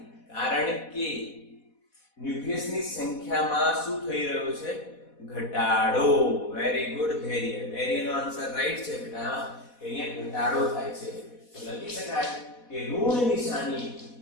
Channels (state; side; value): late; right; 4.1 ms